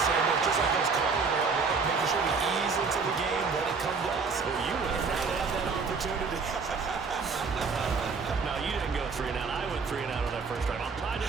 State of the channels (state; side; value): quieter; left; 4.9 dB